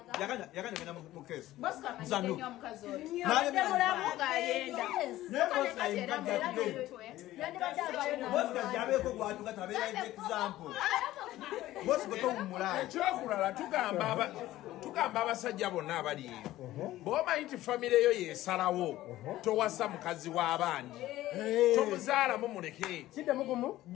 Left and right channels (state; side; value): quieter; right; 15.4 dB